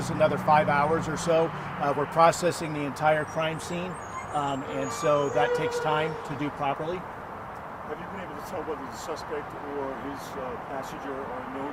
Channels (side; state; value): both; identical; correlation 1.00